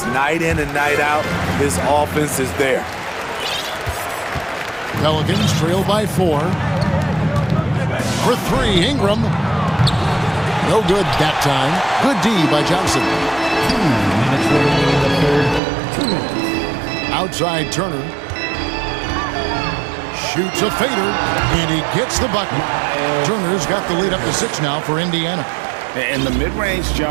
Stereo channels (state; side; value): drops out; left; at 15.6 s